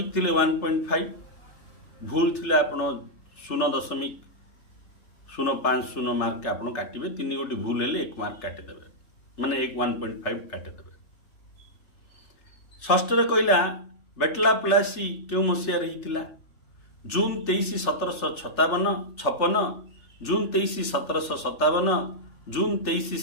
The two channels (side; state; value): right; late; 3.4 ms